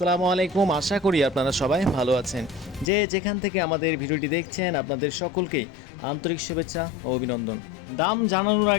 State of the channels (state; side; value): drops out; right; at 2.9 s